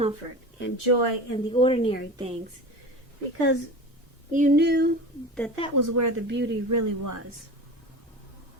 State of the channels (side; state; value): both; normal; correlation 0.32